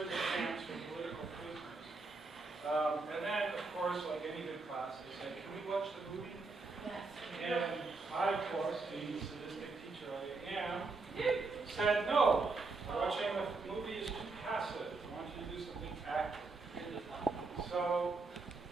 camps for political prisoners. And then, of course, like any good class, they said, can we watch the movie? Yes. And I, of course, being the sadistic teacher I am, said no. Watching the movie is too passive. I want you to do something active. So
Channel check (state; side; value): quieter; left; 3.8 dB